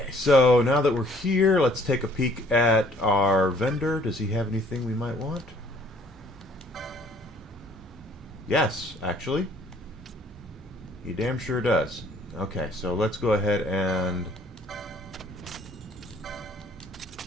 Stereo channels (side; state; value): both; normal; correlation 0.59